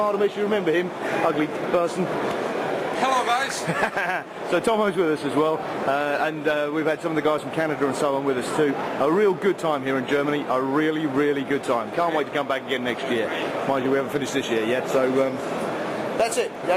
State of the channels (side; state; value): both; identical; correlation 1.00